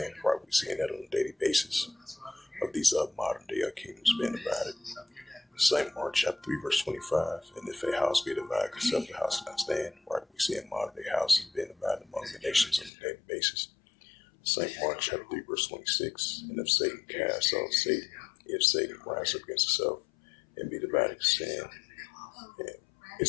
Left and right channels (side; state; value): right; drops out; at 12.9 s